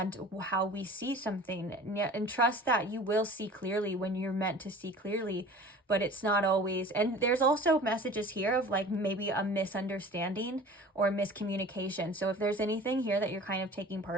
how we see something. And trust that you will see clearly when you're meant to see clearly, but it's not always. And there's also messages here of like maybe a misunderstanding or miscommunication. So if there's anything here that you're kind of taking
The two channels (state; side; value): normal; both; correlation 0.42